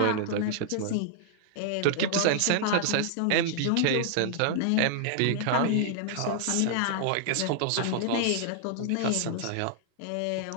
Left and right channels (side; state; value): both; different; correlation 0.00